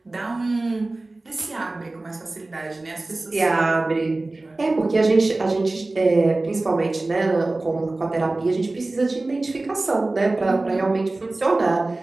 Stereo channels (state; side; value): quieter; left; 3.0 dB